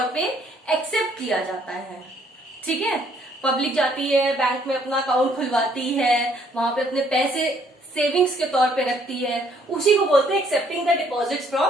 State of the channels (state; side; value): normal; both; correlation 0.65